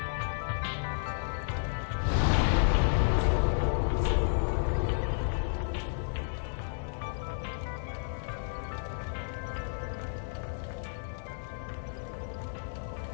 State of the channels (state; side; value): silent; right; digital silence